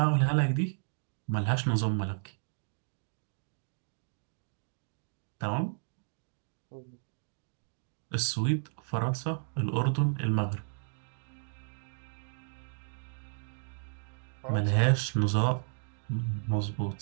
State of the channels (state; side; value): silent; left; digital silence